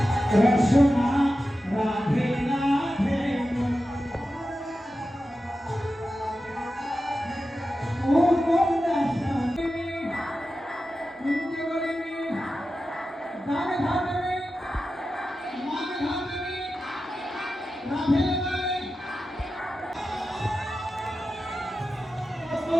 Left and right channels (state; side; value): normal; both; correlation 0.92